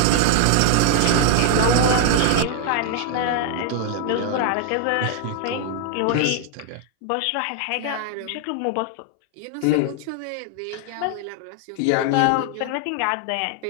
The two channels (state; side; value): different; both; correlation 0.00